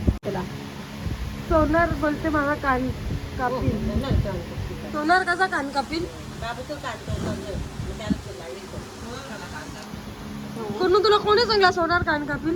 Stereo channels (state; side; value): identical; both; correlation 1.00